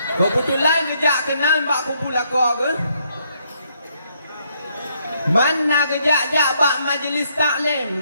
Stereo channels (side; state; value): both; inverted; correlation -0.73